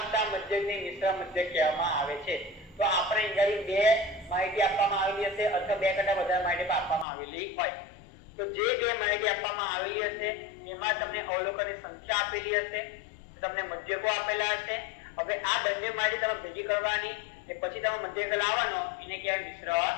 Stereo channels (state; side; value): drops out; right; at 7.1 s